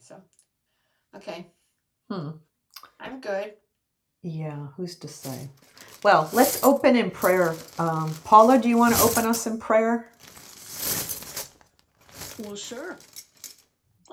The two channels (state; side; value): identical; both; correlation 1.00